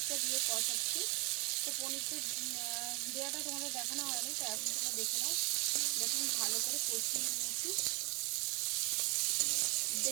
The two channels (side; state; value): left; quieter; 31.3 dB